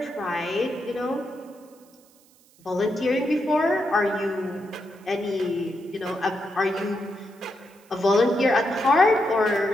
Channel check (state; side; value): noise; right; hiss, 30 dB below the sound